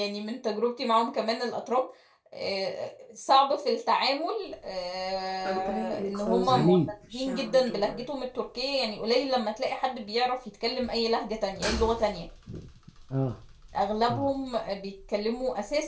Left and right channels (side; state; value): both; identical; correlation 1.00